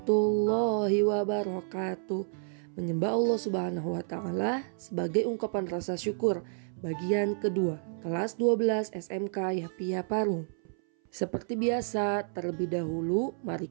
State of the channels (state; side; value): silent; left; 58 dB below the other